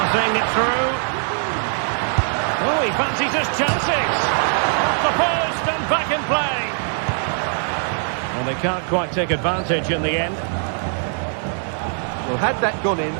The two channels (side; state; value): left; silent; 56 dB below the other